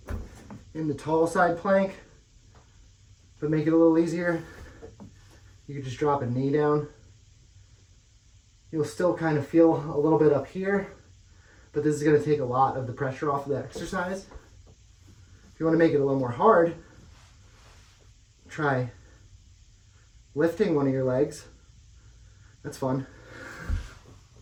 in the tall side plank, but make it a little easier, you can just drop a knee down. You'll still kind of feel a little bit up here, but this is going to take a lot of the pressure off of the exercise. If you want to make it a little more hard, try lifting one of your legs. That's fun.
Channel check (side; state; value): both; identical; correlation 1.00